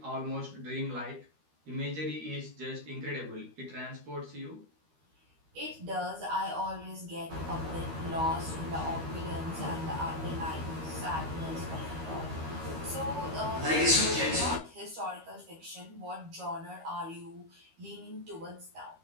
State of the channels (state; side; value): late; left; 13 ms